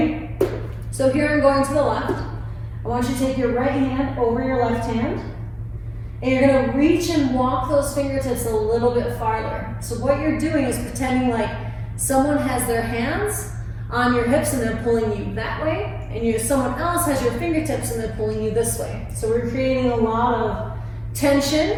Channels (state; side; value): identical; both; correlation 1.00